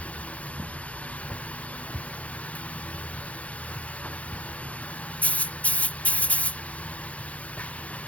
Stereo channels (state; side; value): late; right; 0.066 ms